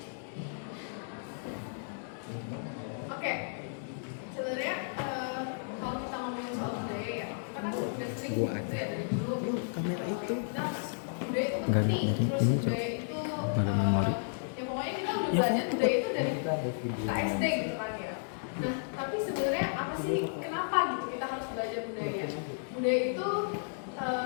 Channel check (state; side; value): silent; right; digital silence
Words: Oke, sebenarnya kalau kita ngomongin soal budaya ya, kita kan udah sering gitu ya dari dulu. Kamera itu Nah, budaya itu enggak penting, jadi terus ini budaya itu ada memori. ya pokoknya kita udah belajar budaya itu dari KSD gitu kan ya. Nah, tapi sebenarnya apa sih, kenapa gitu kita harus belajar budaya? Budaya itu